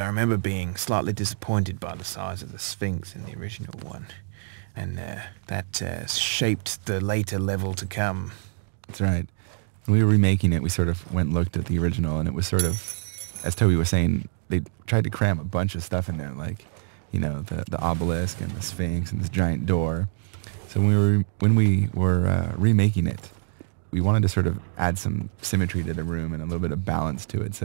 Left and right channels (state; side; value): silent; left; digital silence